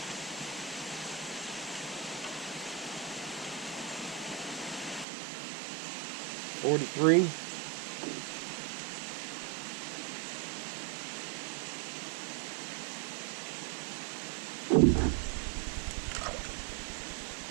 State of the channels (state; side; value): drops out; left; at 5.1 s